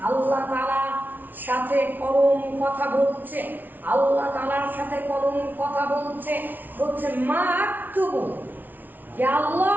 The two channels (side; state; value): left; late; 0.085 ms